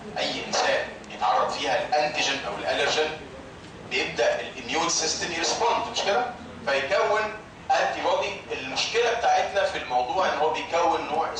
اي انسان يتعرض فيها الانتيجين او الالرجين بيبدا الاميون سيستم يرسبوند، مش كده؟ فيكون انتي بودي. المشكله بتاعتنا في الموضوع ان هو بيكون نوع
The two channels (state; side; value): identical; both; correlation 1.00